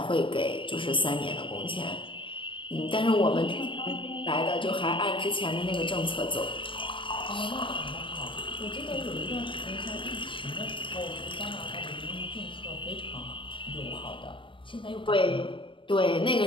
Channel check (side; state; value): right; late; 0.25 ms